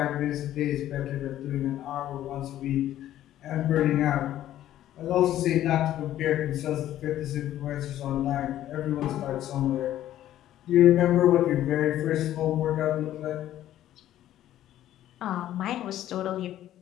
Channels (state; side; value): quieter; right; 12.7 dB